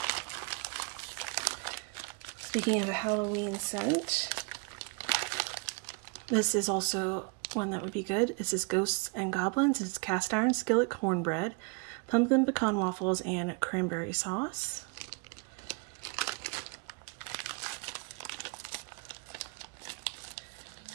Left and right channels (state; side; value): quieter; left; 33.7 dB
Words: Speaking of a Halloween scent, this is also one that would be good. This is Ghosts and Goblins. It's cast iron skillet cornbread, pumpkin pecan waffles, and cranberry sauce.